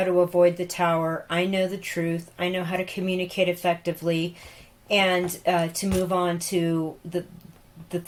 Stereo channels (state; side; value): identical; both; correlation 1.00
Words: to avoid the tower, I know the truth, I know how to communicate effectively, and to move on to the